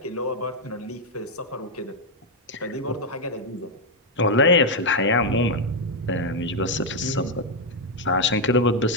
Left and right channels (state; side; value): normal; both; correlation 0.01